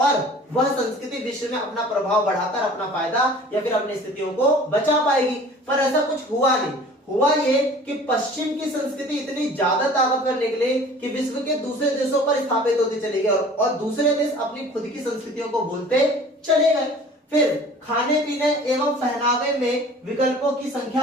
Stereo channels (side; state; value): both; normal; correlation 0.46